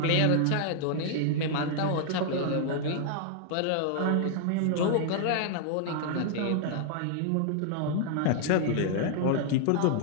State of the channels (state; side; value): different; both; correlation -0.01